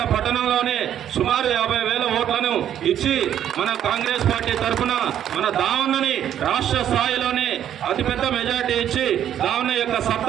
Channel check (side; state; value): left; quieter; 10.3 dB